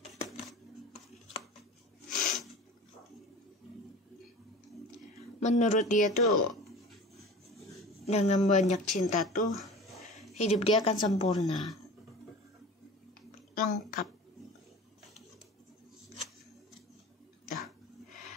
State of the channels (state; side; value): normal; both; correlation 0.37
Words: Menurut dia tuh, dengan banyak cinta tuh hidup dia akan sempurna, lengkap.